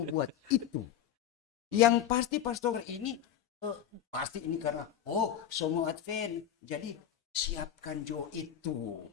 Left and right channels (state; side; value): quieter; right; 10.2 dB